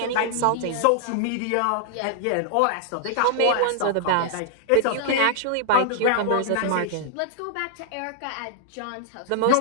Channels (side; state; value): both; different; correlation -0.01